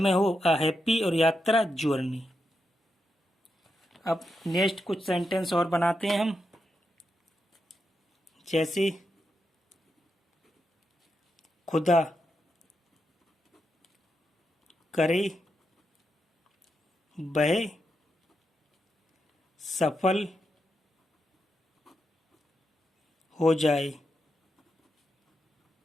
हो, अ हैप्पी, और यात्रा जर्नी। अब नेक्स्ट कुछ सेंटेंस और बनाते हैं हम, जैसे खुदा करे वह सफल हो जाए,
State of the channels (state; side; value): normal; both; correlation 0.85